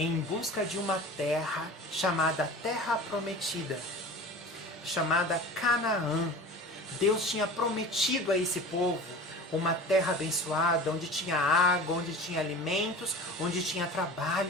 busca de uma terra chamada Terra Prometida, chamada Canaã. Deus tinha prometido a esse povo uma terra abençoada, onde tinha água, onde tinha alimentos, onde tinha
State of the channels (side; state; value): both; normal; correlation 0.37